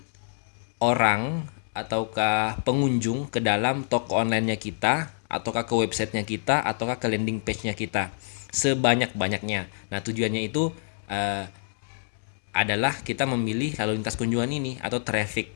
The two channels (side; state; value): right; silent; 60 dB below the other